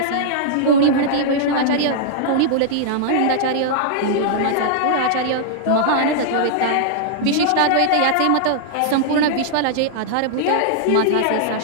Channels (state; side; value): different; both; correlation -0.01